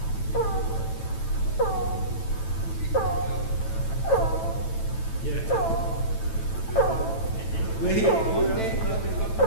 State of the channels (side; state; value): right; late; 9.1 ms